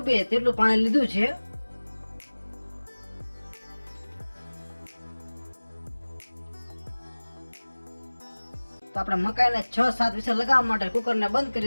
તેટલું પાણી લીધું છે। તો આપણે મકાઈને 6-7 વિસલ લગાવવા માટે કુકરને બંધ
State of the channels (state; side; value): inverted; both; correlation -1.00